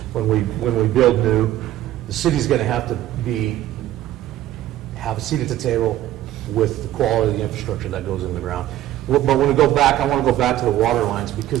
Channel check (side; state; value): left; quieter; 13.5 dB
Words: when we build new, the city's going to have to have a seat at the table with the quality of the infrastructure that goes in the ground. But when we go back, I want to go back to the water lines,